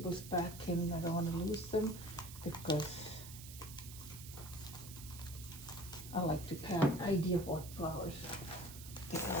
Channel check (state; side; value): noise; right; hiss, 13 dB below the sound